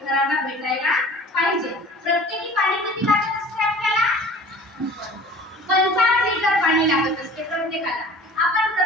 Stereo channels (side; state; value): both; normal; correlation 0.45